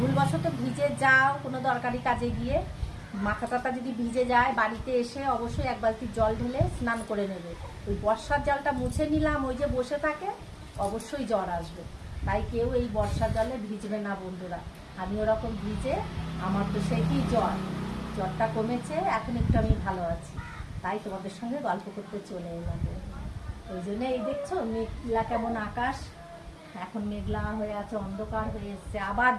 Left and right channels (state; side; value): identical; both; correlation 1.00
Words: ভিজে যাও কোনো দরকারি কাজে গিয়ে, মাথা টাথা যদি ভিজে যায়, বাড়িতে এসে অবশ্যই এক বালতি জল ঢেলে স্নান করে নেবে। ওই বর্ষার জলটা মুছে নিলাম, ওই যে বসে থাকে, অবশ্যই জ্বর আসবে। তাই কেউ এই বর্ষার জলে ভিজবে না বন্ধুরা। আমি ওরকম ভিজে আমার তো সেই কি জ্বরটা কমেছে, এখন একটু আমি ভালো আছি। তাই তোমাদের সঙ্গে গল্প করতে চলে এলাম। ওই জন্য এই দেখছো মেঘলা কেমন আকাশ, এখন মেঘলা হয়ে আছে, অন্ধকার হয়ে এসছে, আবার